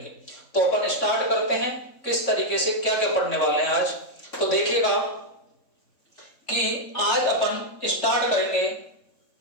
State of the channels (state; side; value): late; right; 3.6 ms